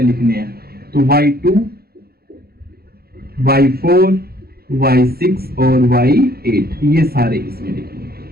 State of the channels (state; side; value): late; left; 0.45 ms